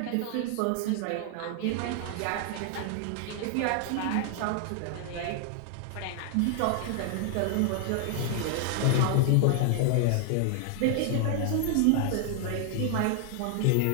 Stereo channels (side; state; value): both; different; correlation 0.00